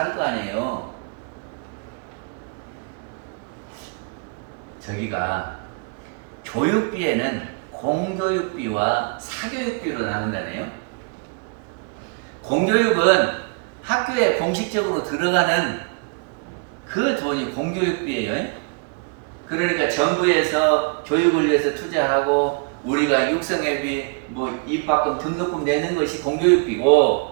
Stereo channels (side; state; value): left; quieter; 35.3 dB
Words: 거 아니에요. 저기가 교육비에는 공교육비와 사교육비로 나눈다네요. 공교육은 학교에 공식적으로 들어가는 그 돈이 공교육비예요. 그러니까 정부에서 교육을 위해서 투자하고 우리가 육성회비, 입학금, 등록금 내는 것이 공교육비고,